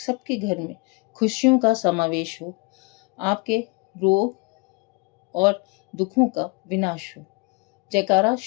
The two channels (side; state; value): right; quieter; 28.5 dB